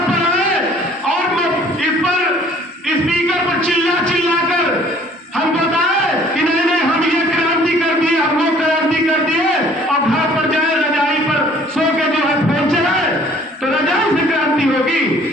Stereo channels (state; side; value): normal; both; correlation 0.55